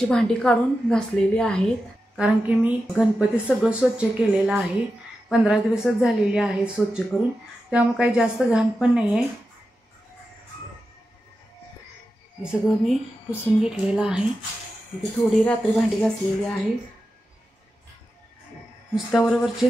भांडी काढून घासलेली आहेत, कारण की मी गणपती सगळं स्वच्छ केलेलं आहे। 15 दिवसच झालेले आहेत स्वच्छ करून, त्यामुळे काही जास्त घाण पण नाही आहे। हे सगळं मी पुसून घेतलेलं आहे। इथे थोडी रात्री भांडी घासलेली आहे, नुसत्या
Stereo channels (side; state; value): both; normal; correlation 0.91